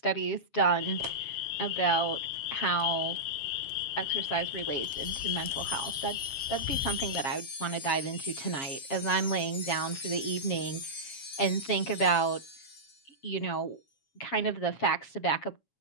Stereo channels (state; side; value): late; right; 7.3 ms